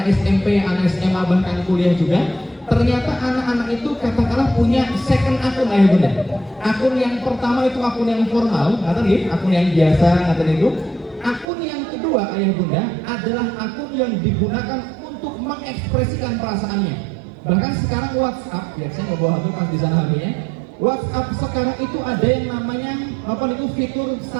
SMP, anak SMA, bahkan kuliah juga, ternyata anak-anak itu katakanlah punya second akun ayah bunda. Akun yang pertama itu akun yang formal, katanya akun yang biasa, katanya itu. Akun yang kedua ayah bunda adalah akun yang digunakan untuk mengekspresikan perasaannya. Bahkan sekarang WhatsApp, ya saya mau bawa HP pas di sana HP-nya. WhatsApp sekarang itu ada yang namanya apa itu fitur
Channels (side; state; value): left; drops out; at 11.5 s